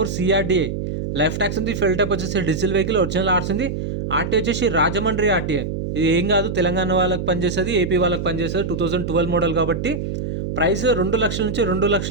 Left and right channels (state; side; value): noise; right; hum, 4 dB below the sound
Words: CRDI. Life tax ఉంది. ఫెయిల్ టైప్ వచ్చేసి డీజిల్ వెహికల్, ఒరిజినల్ ఆర్ట్స్ ఉంది. ఆర్టీ వచ్చేసి రాజమండ్రి ఆర్టీఏ. ఇది ఏం కాదు, తెలంగాణ వాళ్ళకి పనిచేస్తుంది, ఏపీ వాళ్ళకి పనిచేస్తుంది. 2012 మోడల్ కాబట్టి ప్రైస్ 2 లక్షల నుంచి